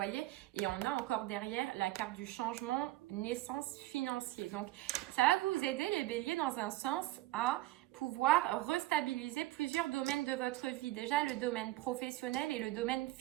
Et on a encore derrière la carte du changement, naissance financier. Donc, ça va vous aider les béliers dans un sens à pouvoir restabiliser plusieurs domaines de votre vie. Déjà, le domaine professionnel et le domaine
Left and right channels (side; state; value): left; quieter; 17.3 dB